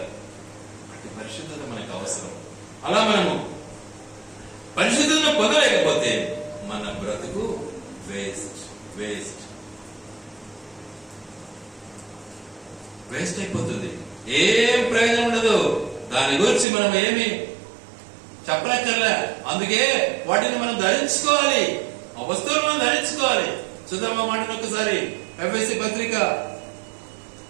అట్టి పరిశుద్ధత మనకు అవసరం. అలా మనము పరిశుద్ధతను పొందలేకపోతే మన బ్రతుకు వేస్ట్ వేస్ట్ వేస్ట్ అయిపోతుంది. ఏం ప్రయోజనం ఉండదు. దాని గురించి మనం ఏమి చెప్పనక్కర్లే. అందుకే వాటిని మనం ధరించుకోవాలి, ఆ వస్తువులు మనం ధరించుకోవాలి. చూద్దాం ఆ మాటను ఒకసారి. ఎఫెసీ పత్రిక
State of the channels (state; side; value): drops out; left; at 16.7 s